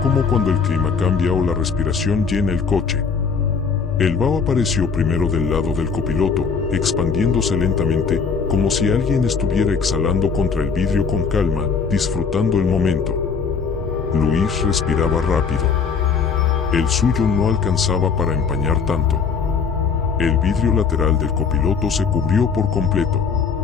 cuando el clima cambia o la respiración llena el coche. El vaho apareció primero del lado del copiloto, expandiéndose lentamente, como si alguien estuviera exhalando contra el vidrio con calma, disfrutando el momento. Luis respiraba rápido. El suyo no alcanzaba para empañar tanto. El vidrio lateral del copiloto se cubrió por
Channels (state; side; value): quieter; right; 5.7 dB